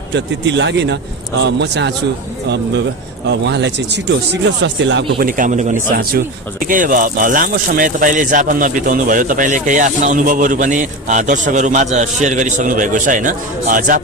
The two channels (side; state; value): both; normal; correlation 0.24